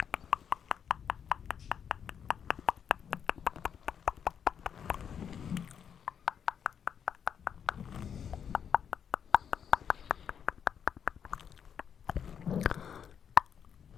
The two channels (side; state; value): right; quieter; 7.9 dB